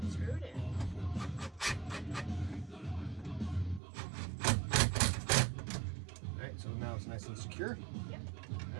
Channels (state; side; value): drops out; left; at 3.8 s